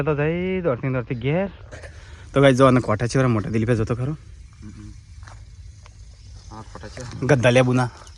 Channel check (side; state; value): both; identical; correlation 1.00